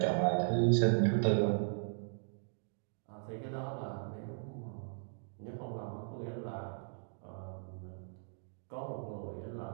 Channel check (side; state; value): left; silent; digital silence